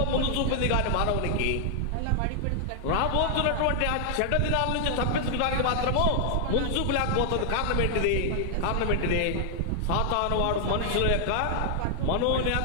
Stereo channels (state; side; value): different; both; correlation 0.00